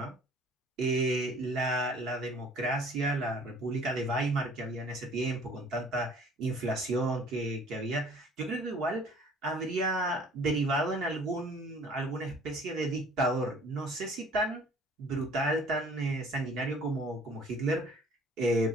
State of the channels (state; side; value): normal; both; correlation 0.52